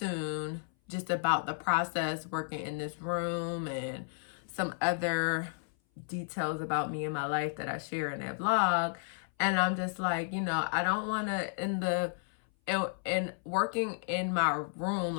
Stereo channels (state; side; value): silent; right; 56 dB below the other